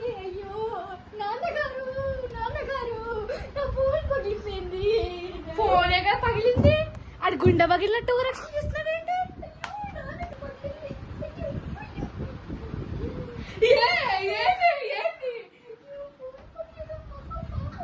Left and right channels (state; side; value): identical; both; correlation 1.00